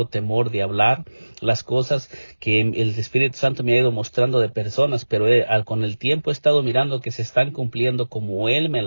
temor de hablar las cosas que el Espíritu Santo me ha ido mostrando de personas, pero con el tiempo he estado mirando que se están cumpliendo como Él me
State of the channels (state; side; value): inverted; both; correlation -1.00